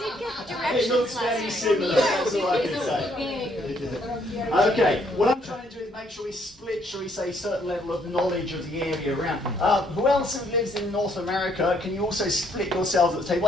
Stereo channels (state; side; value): normal; both; correlation 0.68